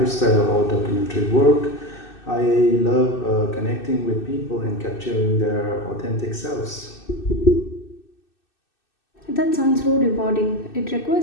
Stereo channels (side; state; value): right; late; 2.6 ms